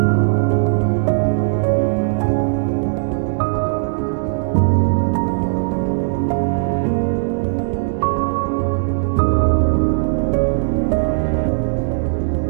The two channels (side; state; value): left; silent; digital silence